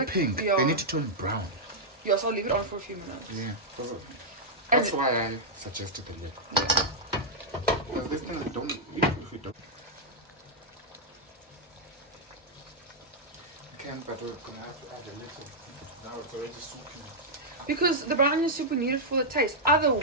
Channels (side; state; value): both; normal; correlation -0.06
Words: pink. Yeah. They need to turn brown. Yeah, so I'll leave it on for a few minutes. Yeah. And That's why I suggested the lid. Because this thing, don't. If we don't. Can, but we're gonna have to add a little. Now it's already soupy. Because the brown onion soup we need it for the taste.